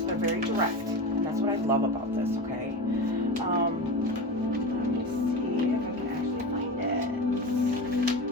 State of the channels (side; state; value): both; normal; correlation 0.24